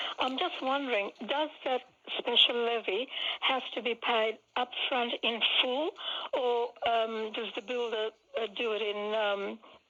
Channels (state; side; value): identical; both; correlation 1.00